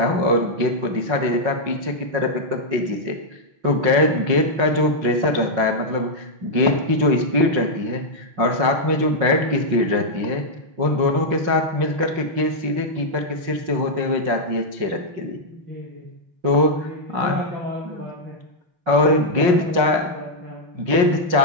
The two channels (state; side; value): late; left; 5.5 ms